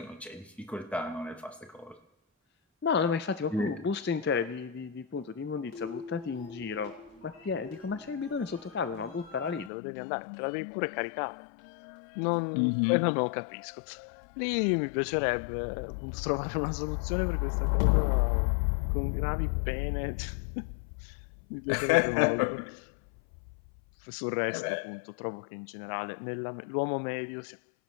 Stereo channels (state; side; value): drops out; right; at 9.7 s